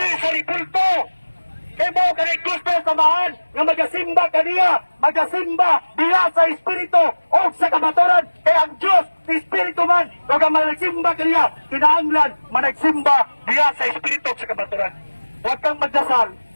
sa ribulto. Kaya mo ka rin gusto samahan nga magasimba ka niya, magasimba diya sa Espiritu o sa kamaturan. Kaya ang Diyos, Espiritu man, kung managsimba ka niya, kinahanglan managsimba diya sa Espiritu o sa kamaturan. Huwag kang magdasal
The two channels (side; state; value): both; inverted; correlation -1.00